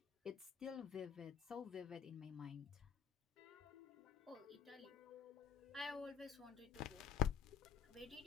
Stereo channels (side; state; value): right; quieter; 8.1 dB